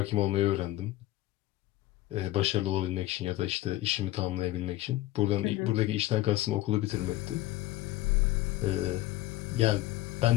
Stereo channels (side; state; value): right; quieter; 15.9 dB